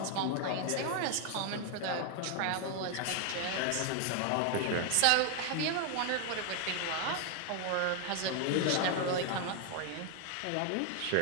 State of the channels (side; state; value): both; different; correlation 0.00